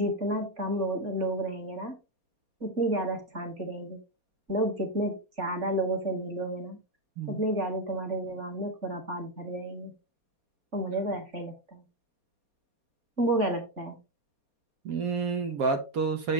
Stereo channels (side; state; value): left; late; 4.2 ms